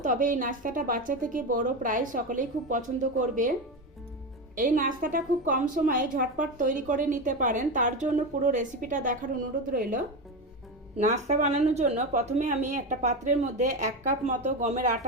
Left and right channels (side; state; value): both; normal; correlation 0.18